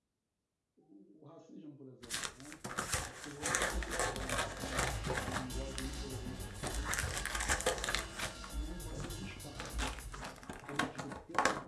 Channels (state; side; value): identical; both; correlation 1.00